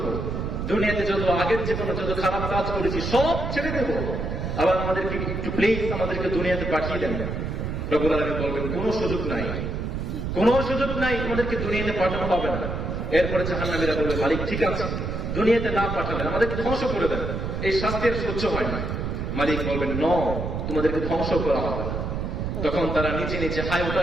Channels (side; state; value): right; noise; rumble, 3 dB below the sound